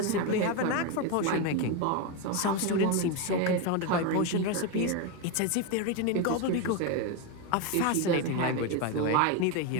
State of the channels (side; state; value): both; different; correlation 0.03